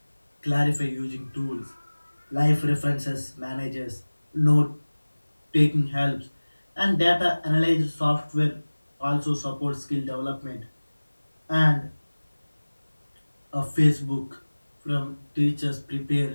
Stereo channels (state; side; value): inverted; both; correlation -1.00